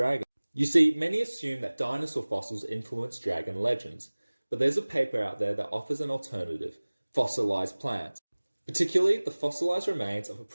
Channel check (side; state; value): both; inverted; correlation -1.00